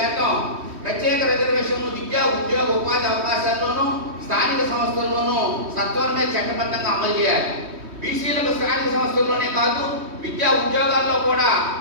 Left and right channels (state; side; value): late; left; 3.1 ms